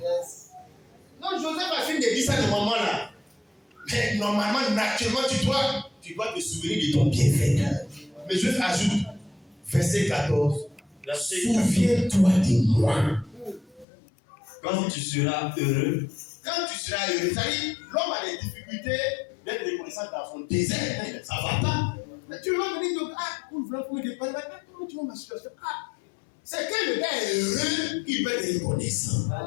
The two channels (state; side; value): drops out; right; at 13.9 s